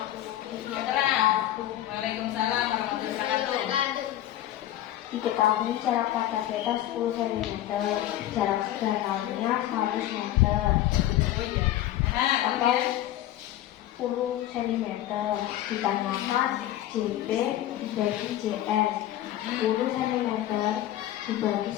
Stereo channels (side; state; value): right; quieter; 13.4 dB